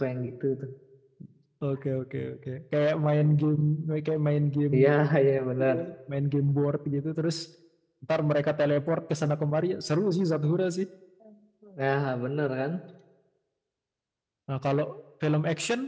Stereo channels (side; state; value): both; identical; correlation 1.00